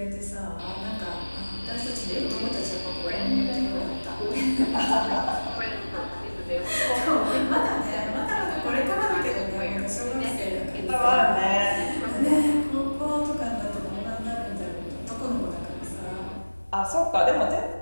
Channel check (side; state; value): both; inverted; correlation -1.00